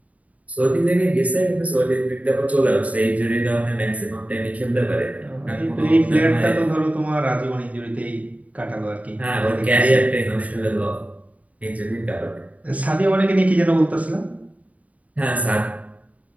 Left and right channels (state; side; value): late; left; 0.070 ms